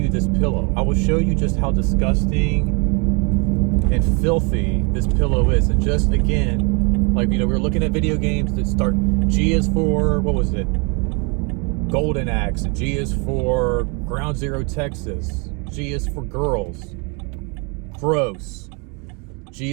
this pillow. I will show you just how disgusting and filthy this pillow is. And just, again, like, you know, we were looking at video games that start, G is for, what was it? Golden Axe. G is for Ground Zero Texas. G is for girls. Gross. G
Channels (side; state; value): left; quieter; 32.9 dB